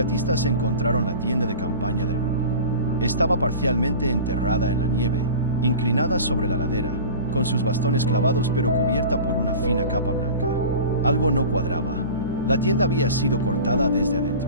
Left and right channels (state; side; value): inverted; both; correlation -0.36